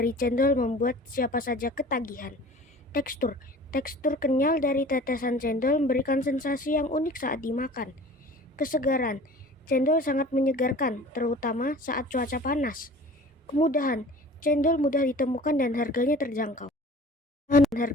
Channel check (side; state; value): both; normal; correlation 0.44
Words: cendol membuat siapa saja ketagihan. Tekstur. Tekstur kenyal dari tetesan cendol memberikan sensasi yang unik saat dimakan. Kesegaran. Cendol sangat menyegarkan, terutama saat cuaca panas. Kemudahan. Cendol mudah ditemukan dan harganya terjangkau.